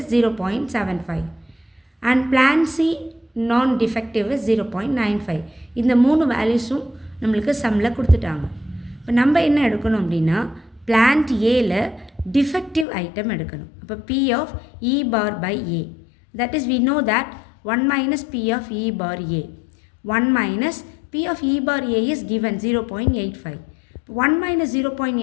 0.75. And plant C non-defective is 0.95. இந்த மூணு வேல்யூஸும் நம்மளுக்கு சம்மில் கொடுத்துட்டாங்க. இப்போ நம்ம என்ன எடுக்கணும் அப்படின்னா பிளான்ட் ஏல டிஃபெக்டிவ் ஐட்டம் எடுக்கணும். அப்போ P of E bar by A, that is we know that 1 minus P of E bar A. 1 minus P of E bar A is given 0.85. 1 minus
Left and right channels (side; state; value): right; drops out; at 12.9 s